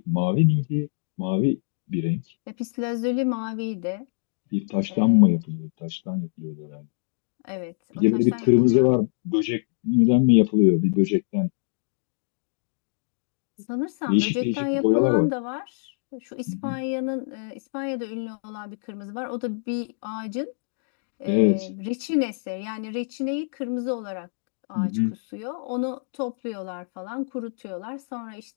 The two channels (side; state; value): right; silent; digital silence